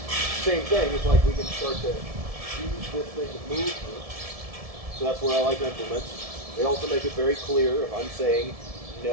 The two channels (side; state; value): left; late; 1.7 ms